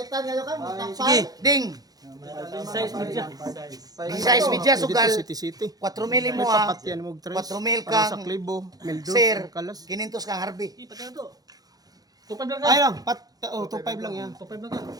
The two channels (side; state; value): left; late; 0.18 ms